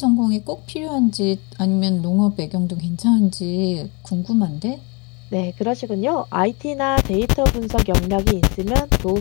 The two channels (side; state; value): right; quieter; 30.7 dB